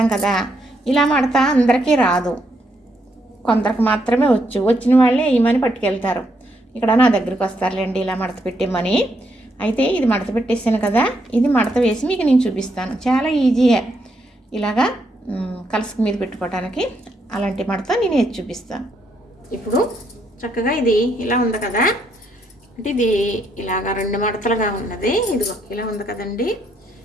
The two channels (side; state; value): both; normal; correlation 0.76